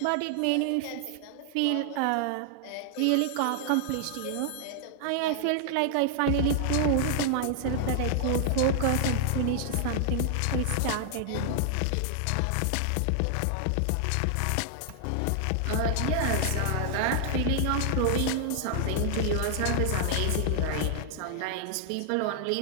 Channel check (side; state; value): both; different; correlation -0.01